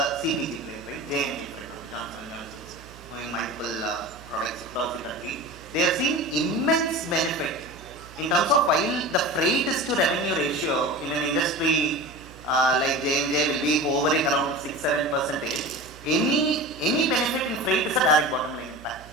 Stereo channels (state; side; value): noise; right; hum, 20 dB below the sound